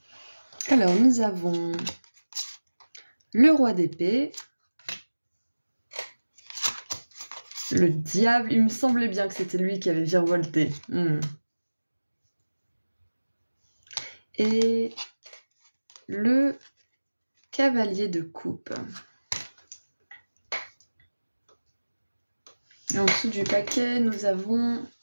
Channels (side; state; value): both; inverted; correlation -1.00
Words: Alors nous avons le roi d'épée. Le diable, il me semblait bien que c'était lui qui avait virevolté. Et le cavalier de coupe. Et en dessous du paquet, nous avons